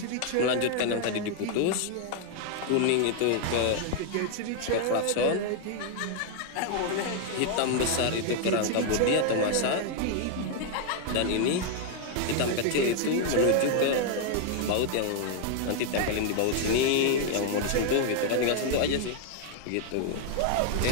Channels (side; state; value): both; different; correlation 0.00